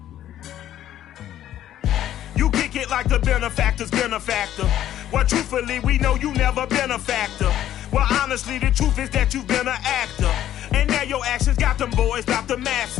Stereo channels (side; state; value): right; quieter; 11.9 dB